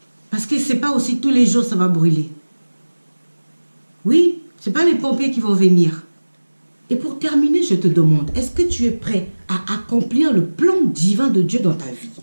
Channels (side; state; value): both; inverted; correlation -1.00